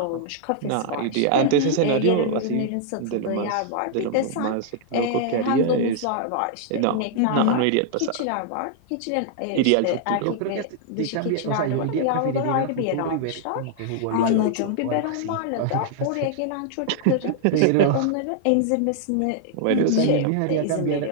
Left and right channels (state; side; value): different; both; correlation -0.01